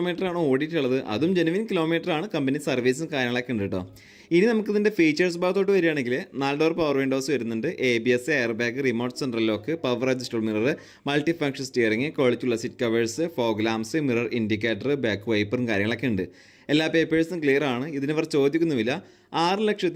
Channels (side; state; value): both; identical; correlation 1.00